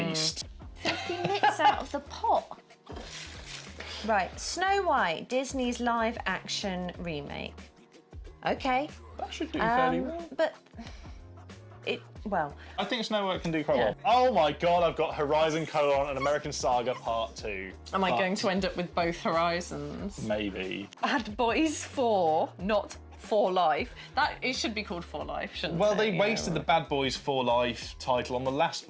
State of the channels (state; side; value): identical; both; correlation 1.00